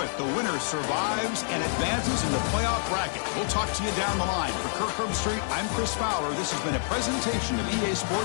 The winner survives and advances in the playoff bracket. We'll talk to you down the line. For Kirk Herbstreit, I'm Chris Fowler. This has been a presentation of EA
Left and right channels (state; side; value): silent; right; 60 dB below the other